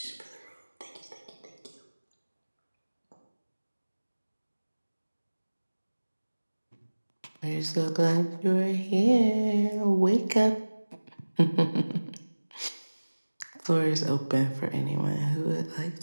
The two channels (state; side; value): inverted; both; correlation -1.00